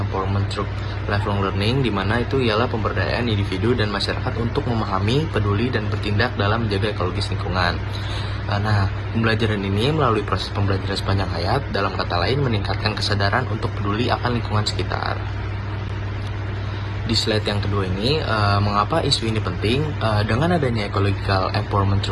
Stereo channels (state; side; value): identical; both; correlation 1.00